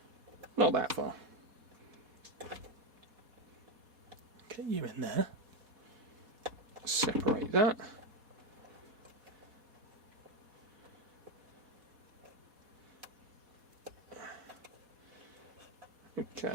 Not that far. Get you in there. Separate that.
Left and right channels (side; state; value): left; late; 4.2 ms